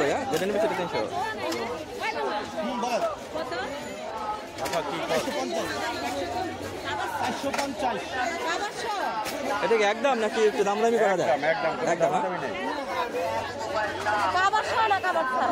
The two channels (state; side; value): identical; both; correlation 1.00